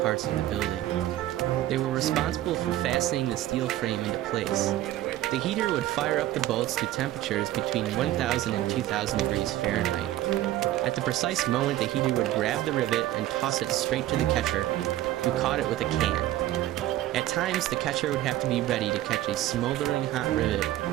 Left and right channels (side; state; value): left; quieter; 14.5 dB